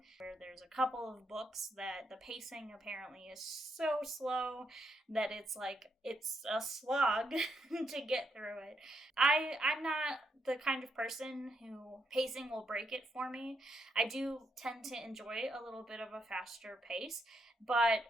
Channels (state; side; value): normal; both; correlation 0.78